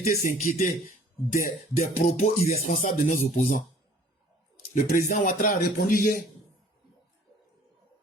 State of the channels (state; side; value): normal; both; correlation 0.53